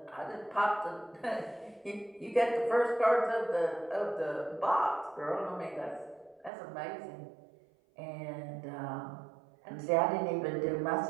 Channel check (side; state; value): left; drops out; at 6.5 s